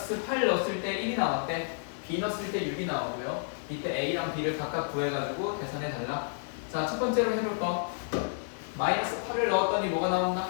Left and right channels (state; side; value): silent; right; digital silence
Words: 8 넣었을 때 1이 나왔대. b 넣었을 때 6이 나오고요. 이때 a랑 b를 각각 구해가지고 계산해 달라. 자, 첫 번째로 해볼 거. 마이너스 8을 넣었더니 뭐가 나온다?